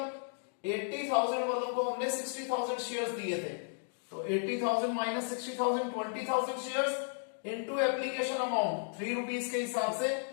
80,000 वालों को हमने 60,000 शेयर्स दिए थे, तो 80,000 minus 60,000 20,000 shares into application amount 3 rupees के हिसाब से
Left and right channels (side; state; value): right; silent; digital silence